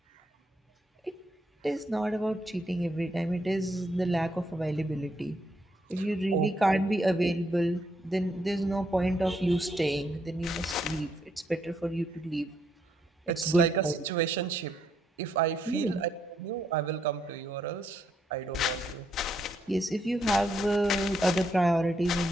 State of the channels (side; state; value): both; normal; correlation 0.75